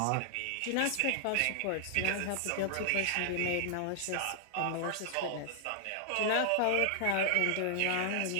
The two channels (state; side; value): different; both; correlation -0.01